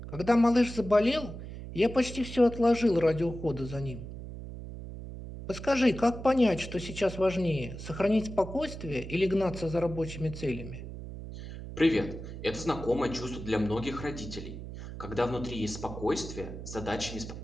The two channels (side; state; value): right; noise; hum, 10 dB below the sound